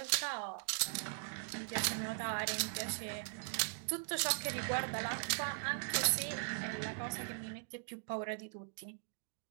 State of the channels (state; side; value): silent; left; digital silence